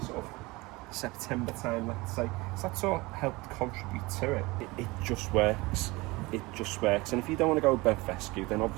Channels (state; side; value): quieter; left; 22.8 dB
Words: sort of September time, let's say. So that sort of helped contribute to it. It just works. It just works. And if you don't want to go with Fescue, then